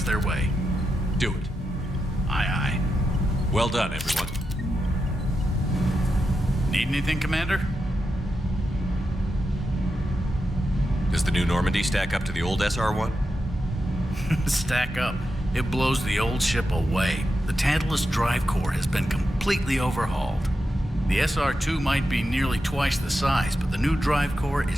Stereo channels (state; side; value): normal; both; correlation 0.88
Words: their way. Do it. Aye, aye. Well done, everyone. Need anything, Commander? Does the new Normandy stack up to the old SR-1? Stack up. It blows the old ship away. The Tantalus drive core has been completely overhauled. The SR-2 might be nearly twice the size, but the new drive core